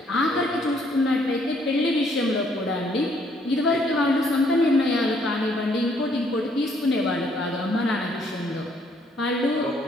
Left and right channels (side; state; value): both; normal; correlation 0.67